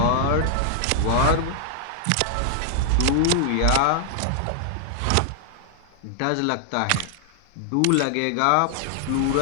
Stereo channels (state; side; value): different; both; correlation -0.01